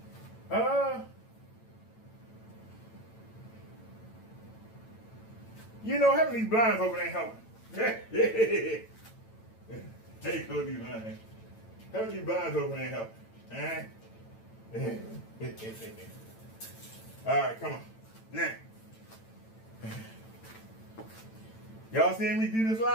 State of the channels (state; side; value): late; right; 9.0 ms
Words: You know, having these blinds open ain't helping. Hey, go these blinds. Having these blinds open ain't helping. All right, come on. Now. Y'all seeing me do this